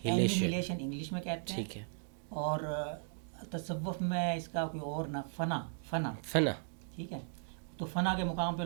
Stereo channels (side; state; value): left; silent; digital silence